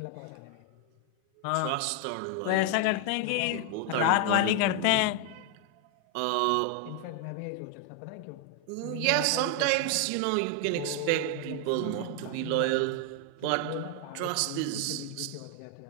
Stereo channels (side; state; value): both; different; correlation 0.01